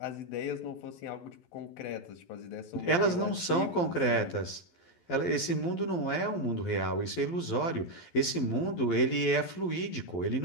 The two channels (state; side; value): late; right; 12 ms